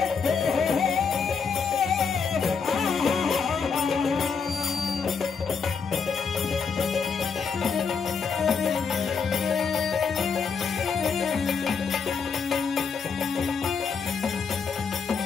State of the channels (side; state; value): right; quieter; 5.7 dB